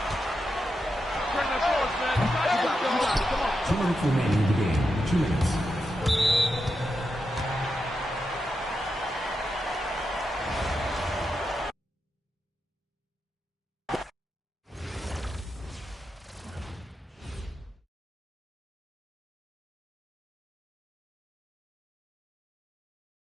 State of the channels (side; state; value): both; normal; correlation 0.87